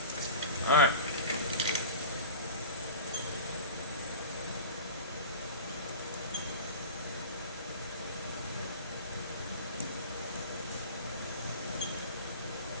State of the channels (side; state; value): both; inverted; correlation -0.34